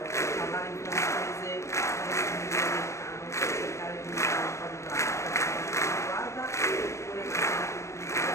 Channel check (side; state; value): right; late; 0.14 ms